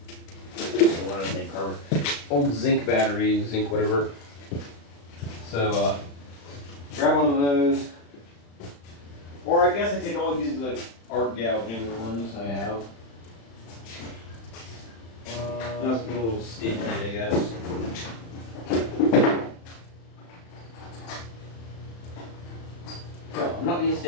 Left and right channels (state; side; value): late; right; 35 ms